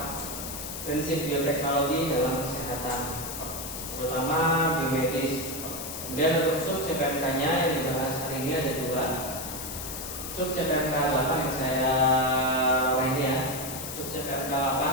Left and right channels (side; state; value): left; noise; hiss, 8 dB below the sound